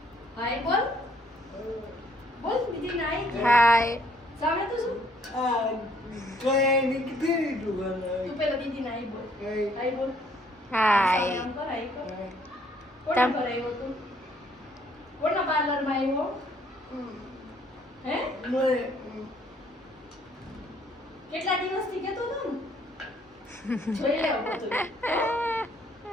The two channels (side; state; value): both; normal; correlation 0.64